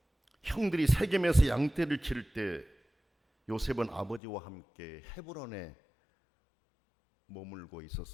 형들이 세겜에서 양떼를 치를 때 요셉은 아버지와 함께 헤브론에 머물고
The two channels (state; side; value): drops out; right; at 4.2 s